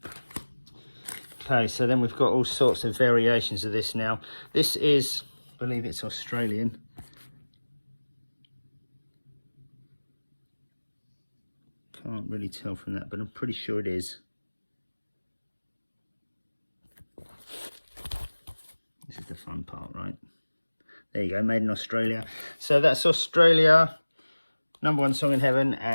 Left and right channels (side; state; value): both; inverted; correlation -1.00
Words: Okay, so then we've got all sorts of variations of this now. This is, I believe it's Australian. Can't really tell from that, but I'm pretty sure it is. This is the fun part, right? There you go, made in Australia. So that's Australia, number one song in heaven,